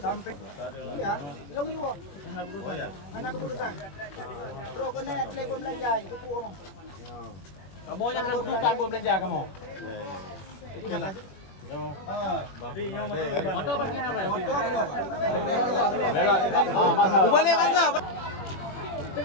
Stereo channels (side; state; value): right; late; 21 ms